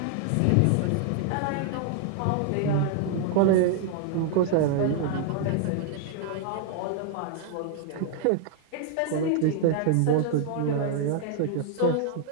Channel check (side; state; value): both; different; correlation 0.00